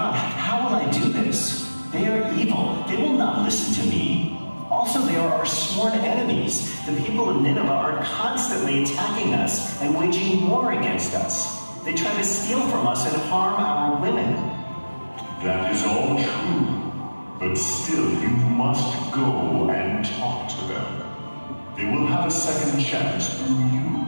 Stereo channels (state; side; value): inverted; both; correlation -1.00